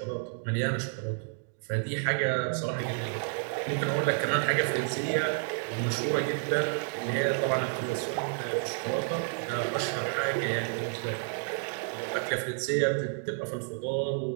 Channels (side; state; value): left; silent; digital silence